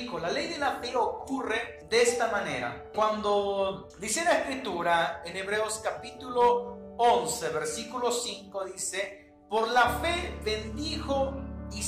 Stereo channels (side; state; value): both; identical; correlation 1.00